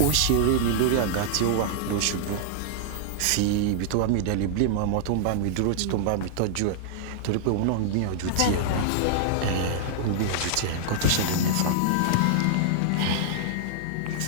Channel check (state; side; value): different; both; correlation -0.01